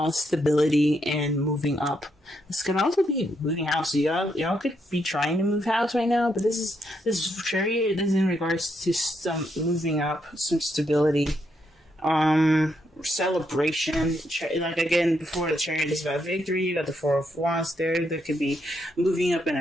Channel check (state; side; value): normal; both; correlation 0.78